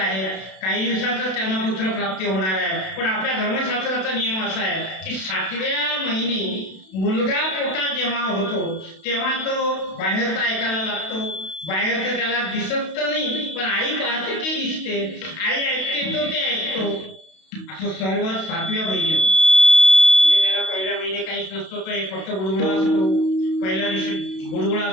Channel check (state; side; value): late; right; 32 ms